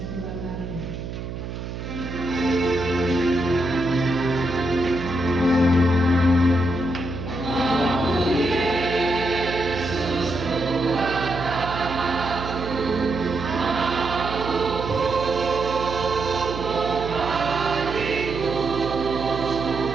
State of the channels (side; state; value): right; noise; hum, 7 dB below the sound